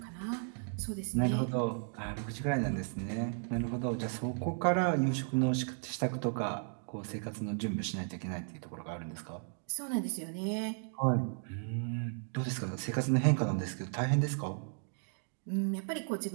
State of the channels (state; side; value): silent; left; 54 dB below the other